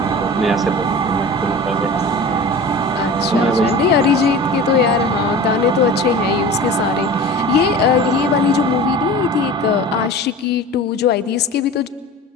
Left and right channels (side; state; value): both; normal; correlation 0.36